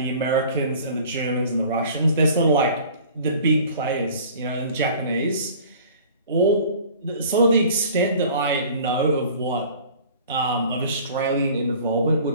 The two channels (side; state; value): both; inverted; correlation -0.47